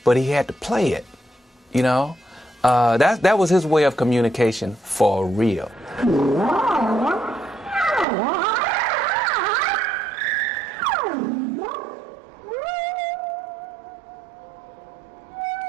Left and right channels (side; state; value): left; drops out; at 8.1 s